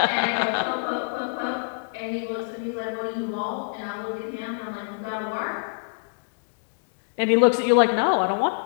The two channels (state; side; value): silent; right; 62 dB below the other